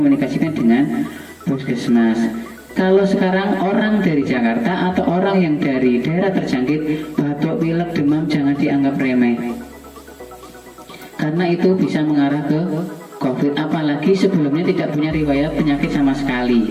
dengan puskesmas. Kalau sekarang orang dari Jakarta atau orang yang dari daerah terjangkit batuk, pilek, demam jangan dianggap remeh. Karena itu bisa mengarah ke COVID, apalagi sebelumnya tidak punya riwayat penyakit sama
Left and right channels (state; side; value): identical; both; correlation 1.00